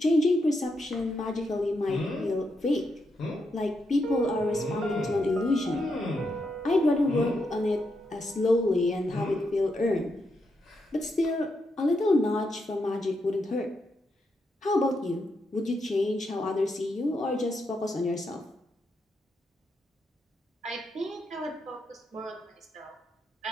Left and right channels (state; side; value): normal; both; correlation 0.82